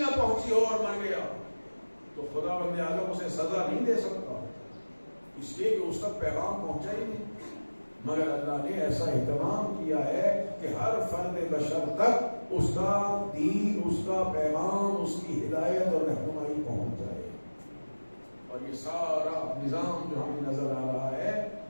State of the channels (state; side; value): inverted; both; correlation -1.00